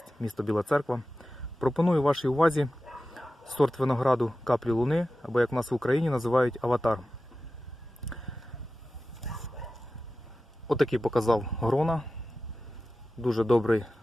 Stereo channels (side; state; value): both; normal; correlation 0.94